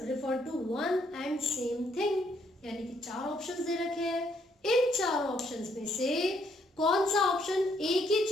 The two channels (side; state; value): both; normal; correlation 0.71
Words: refer to one and same thing, यानी कि 4 ऑप्शंस दे रखे हैं। इन 4 ऑप्शंस में से कौन सा ऑप्शन एक ही